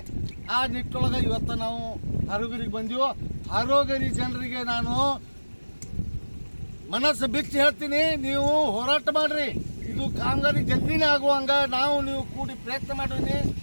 ಆ ನಿಟ್ಟೊಳಗೆ ಇವತ್ತು ನಾವು ಹಾರೋಗಿರಿಗೆ ಬಂದೀವೋ. ಹಾರೋಗಿರಿ ಜನರಿಗೆ ನಾನು ಮನಸ್ಸು ಬಿಚ್ಚಿ ಹೇಳ್ತೀನಿ, ನೀವು ಹೋರಾಟ ಮಾಡ್ರಿ. ಇದು ಕಾಮಗಾರಿ ಜಲ್ದಿನೇ ಆಗುವಂಗ ನೀವು ಕೂಡಿ ಪ್ರಯತ್ನ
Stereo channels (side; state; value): both; inverted; correlation -1.00